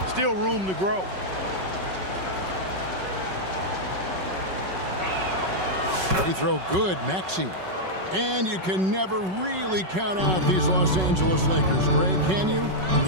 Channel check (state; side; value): late; left; 5.3 ms